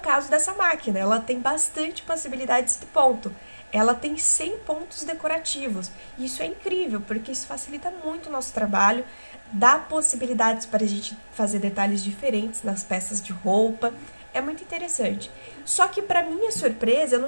dessa máquina, ela tem bastante possibilidades de ponto. Ela tem 100 pontos decorativos. E isso é incrível, porque isso facilita muito o nosso trabalho, dá possibilidades para a gente fazer detalhes diferentes nas peças de roupa. É muito interessante. Só que, para minha surpresa, eu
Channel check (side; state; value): both; inverted; correlation -1.00